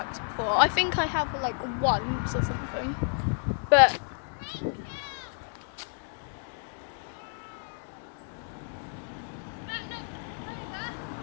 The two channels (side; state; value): right; silent; 58 dB below the other